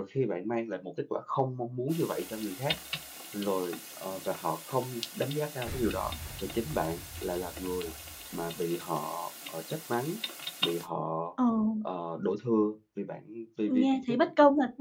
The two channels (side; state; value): both; identical; correlation 1.00